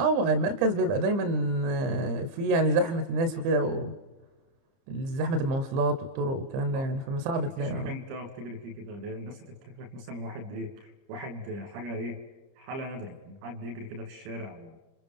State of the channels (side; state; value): left; late; 30 ms